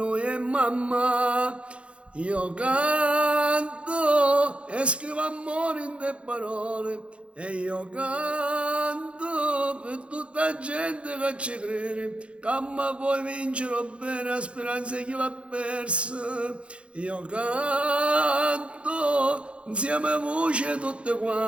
è mamma. Io canto e scrivo amore in te parole e io canto per tutta la gente che ci crede, che ma poi vincerò bene la speranza chi l'ha persa. Io canto insieme a voce tutte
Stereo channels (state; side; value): late; left; 0.060 ms